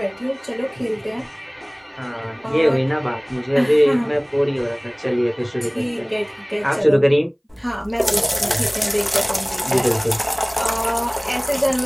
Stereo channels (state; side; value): identical; both; correlation 1.00